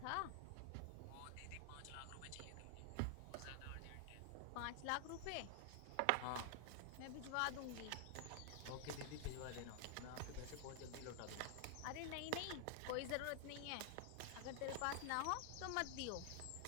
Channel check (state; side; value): different; both; correlation 0.00